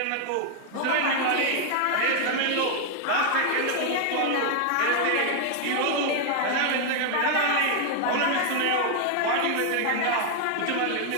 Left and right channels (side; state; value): both; different; correlation 0.00